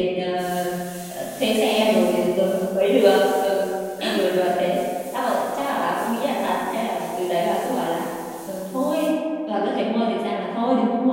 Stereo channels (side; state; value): both; identical; correlation 1.00